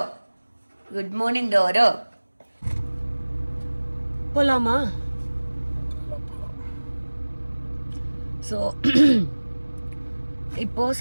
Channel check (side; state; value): both; inverted; correlation -1.00